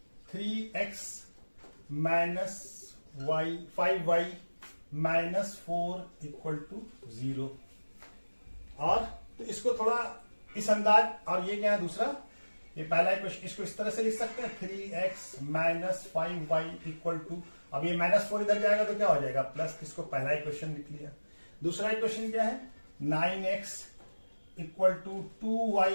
3x minus 5y minus 4 equal to 0। और तो इसको थोड़ा इस अंदाज, और ये क्या है दूसरा, ये पहला क्वेश्चन, इसको इस तरह से लिख सकते हैं 3x minus 5y equal to, अब ये -4 इधर जाएगा तो क्या हो जाएगा प्लस, इसको पहला इक्वेशन लिख लिया। दूसरा इक्वेशन क्या है 9x equal to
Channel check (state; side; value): inverted; both; correlation -1.00